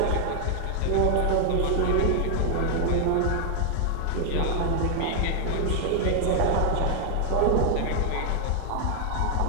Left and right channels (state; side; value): different; both; correlation 0.00